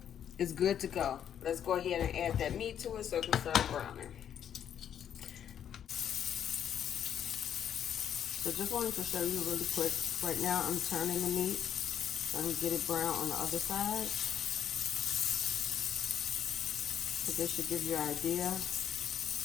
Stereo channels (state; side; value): quieter; right; 9.3 dB